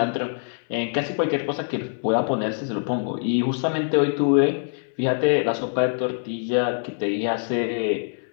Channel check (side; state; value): right; silent; digital silence